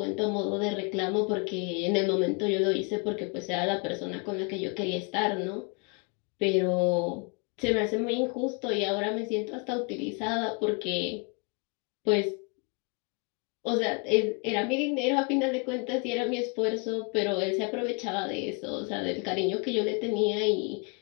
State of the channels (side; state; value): right; quieter; 34.4 dB